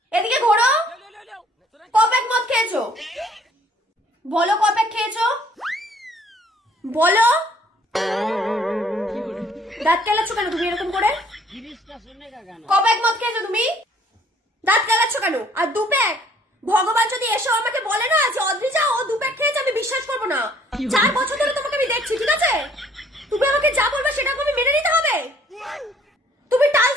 এদিকে ঘোরো। কবে এক মদ খেয়েছো? বলো কবে খেয়েছো? বলো। দাঁত কেলাচ্ছ কেন তুমি এরকম করে? কবে এক মদ খেয়েছো তুমি? দাঁত কেলাচ্ছ কেন? আর দু প্যাক? ভগবান যদি এসে আমাকে বলে না যে অদ্রিজা ও দু প্যাক খেয়েছে, আমি বিশ্বাস করবো না। 4 বছর ধরে তোমাকে আমি দেখছি, ঠিক আছে? তুমি আমাকে যা বলবে সেটা আমি মেনে নিতে হবে। তুমি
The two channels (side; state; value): both; normal; correlation 0.60